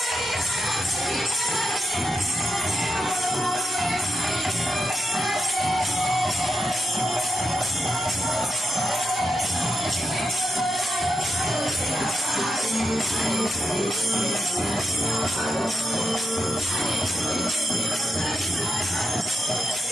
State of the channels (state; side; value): normal; both; correlation 0.85